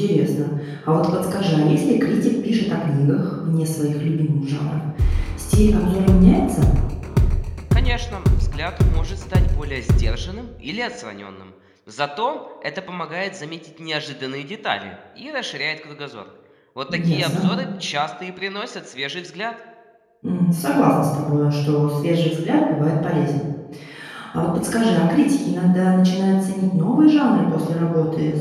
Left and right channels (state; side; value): identical; both; correlation 1.00